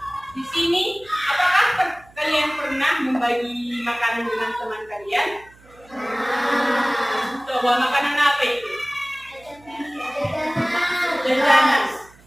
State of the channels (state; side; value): noise; right; hum, 27 dB below the sound